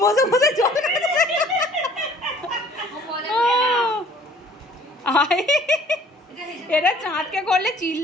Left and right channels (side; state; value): both; normal; correlation 0.55